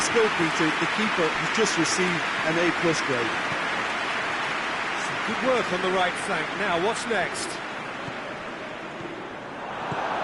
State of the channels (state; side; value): identical; both; correlation 1.00